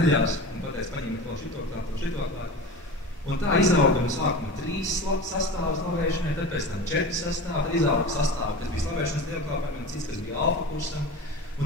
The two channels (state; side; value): normal; both; correlation 0.30